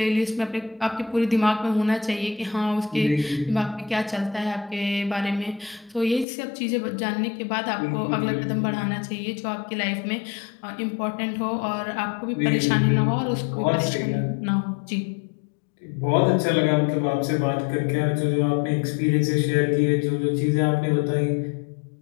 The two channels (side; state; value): right; drops out; at 6.2 s